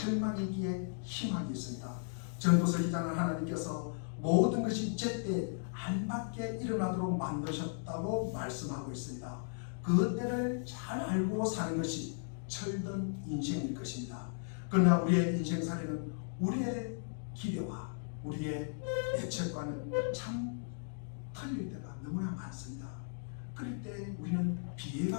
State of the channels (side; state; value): right; silent; digital silence